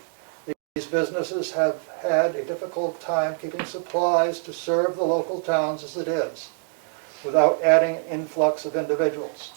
These businesses have had a difficult time keeping supplies to serve the local towns as it is, without adding an influx of individuals.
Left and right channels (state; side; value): silent; left; digital silence